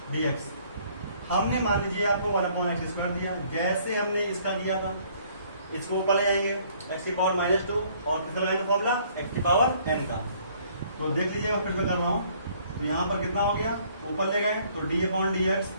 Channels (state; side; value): inverted; both; correlation -0.61